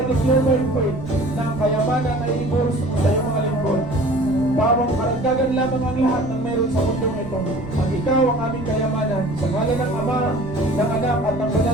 declare by faith na ang kayamanan ay ibuhos sa iyong mga lingkod. Bawang karagdagan lamang ang lahat ng meron sa mundong ito. Ang ikaw ang aming kayamanan. Sa ngalan ng Ama, ng Anak, at ng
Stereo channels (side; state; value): right; noise; rumble, 14 dB below the sound